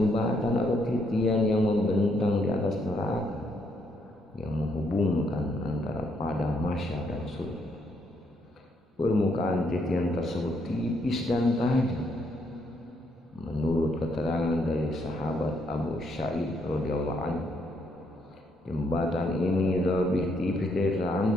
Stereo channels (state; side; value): normal; both; correlation 0.73